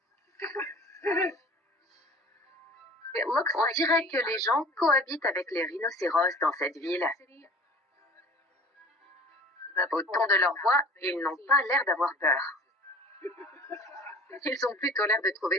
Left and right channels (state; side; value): normal; both; correlation 0.44